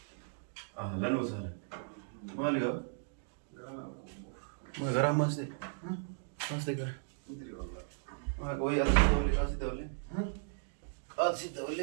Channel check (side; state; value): left; silent; digital silence